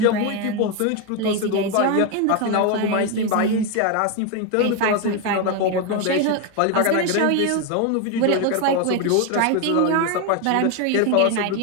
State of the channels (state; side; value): different; both; correlation 0.02